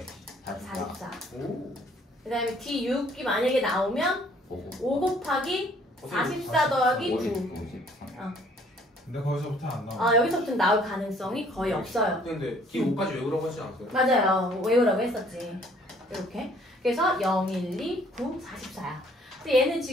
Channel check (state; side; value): normal; both; correlation 0.60